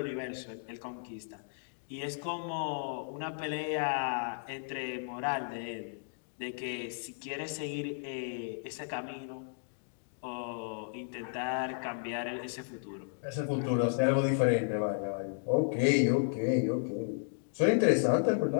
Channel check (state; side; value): silent; right; digital silence